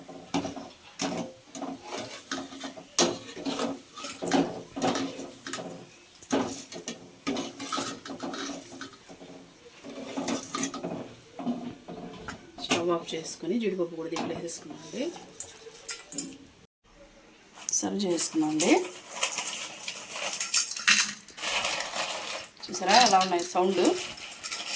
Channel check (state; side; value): identical; both; correlation 1.00